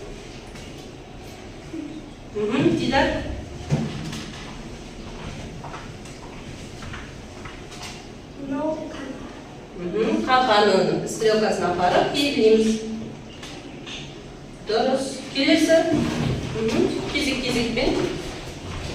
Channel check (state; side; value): identical; both; correlation 1.00